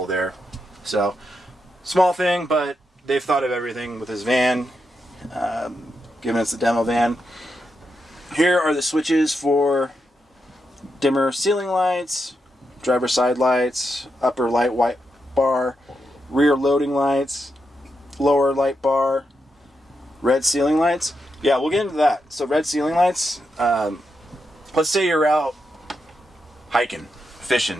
there. So small thing, but they've thought of everything with this van, given it's the demo van. Here are the switches for dimmer ceiling lights, driver side lights, upper light white bar, rear loading lights, lower light bar, red ceiling lights. Yeah, we'll get into that. So red ceiling lights, let's say you're out hiking,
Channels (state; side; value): normal; both; correlation 0.85